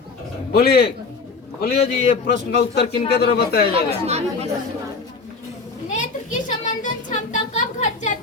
बोलिए बोलिए जी, ये प्रश्न का उत्तर किनके द्वारा बताया जाएगा? नेत्र की संवेदन क्षमता कब घट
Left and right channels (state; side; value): quieter; right; 4.4 dB